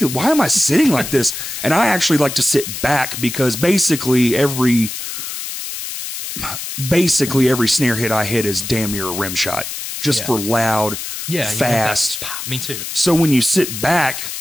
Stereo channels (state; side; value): noise; left; hiss, 7 dB below the sound